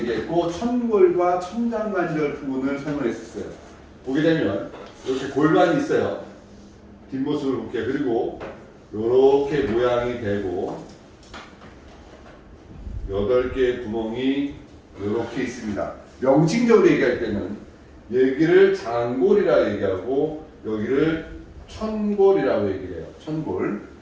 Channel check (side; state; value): both; identical; correlation 1.00